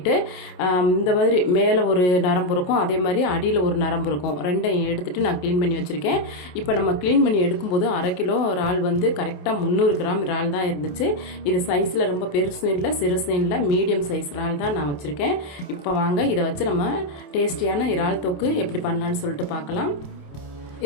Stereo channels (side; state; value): right; late; 28 ms